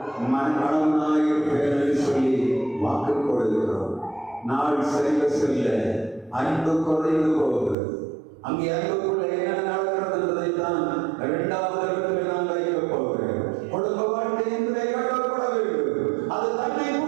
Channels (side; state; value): left; drops out; at 7.8 s